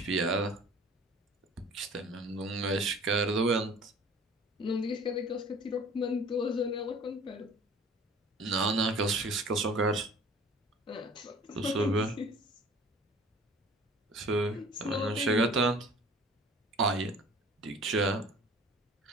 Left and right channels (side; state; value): both; normal; correlation 0.47